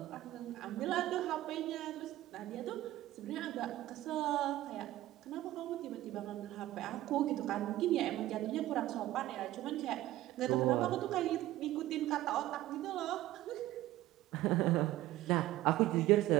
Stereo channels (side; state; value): left; quieter; 15.4 dB